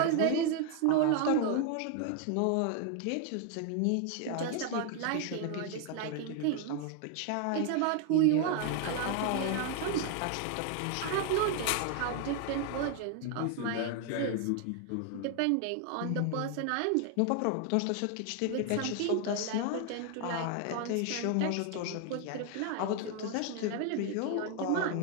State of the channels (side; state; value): both; different; correlation 0.00